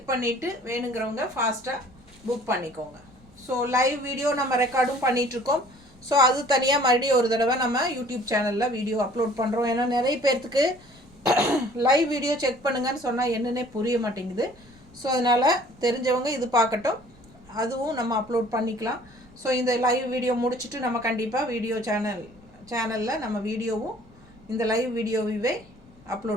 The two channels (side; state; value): left; noise; rumble, 28 dB below the sound